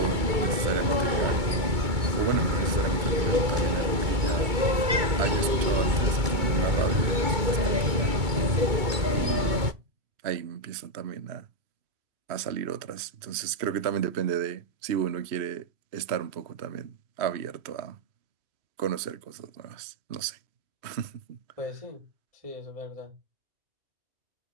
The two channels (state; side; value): late; left; 2.2 ms